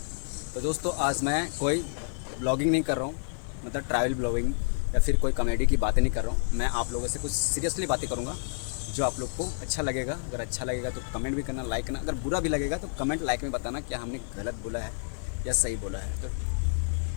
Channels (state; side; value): silent; right; digital silence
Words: तो दोस्तों, आज मैं कोई ब्लॉगिंग नहीं कर रहा हूँ, मतलब ट्रैवल ब्लॉगिंग या फिर कोई कॉमेडी की बातें नहीं कर रहा हूँ। मैं आप लोगों से कुछ सीरियसली बातें करूँगा जो आप लोग को अच्छा लगेगा। अगर अच्छा लगेगा तो कमेंट भी करना, लाइक करना। अगर बुरा भी लगेगा तो कमेंट लाइक में बताना क्या हमने गलत बोला है या सही बोला है।